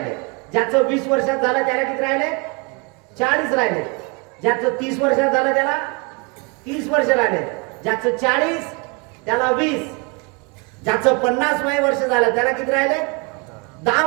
ज्याचं 20 वर्षात झालं त्याला किती राहिले? 40 राहिले. ज्याचं 30 वर्षात झालं त्याला 30 वर्ष राहिले. ज्याचं 40 त्याला 20. ज्याचं 50 वय वर्ष झालं त्याला किती राहिले? 10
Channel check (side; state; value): left; quieter; 30.9 dB